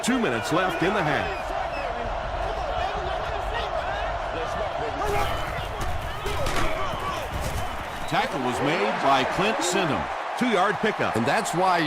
2 minutes left in the half. Tackle was made by Clint Sindham. 2-yard pickup. And that's why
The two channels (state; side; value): identical; both; correlation 1.00